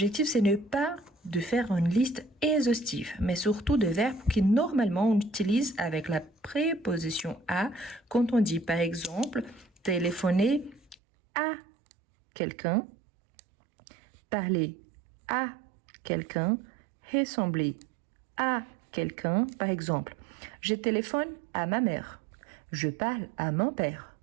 c'est ne pas de faire une liste exhaustive, mais surtout de verbes qui normalement on utilise avec la préposition à quand on dit par exemple téléphoner à quelqu'un, parler à quelqu'un, ressembler à quelqu'un. Par exemple, je téléphone à ma mère, je parle à mon père,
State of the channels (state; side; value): drops out; left; at 11.0 s